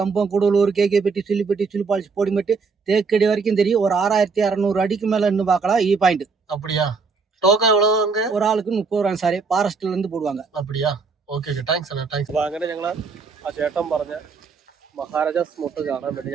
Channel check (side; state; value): left; quieter; 4.8 dB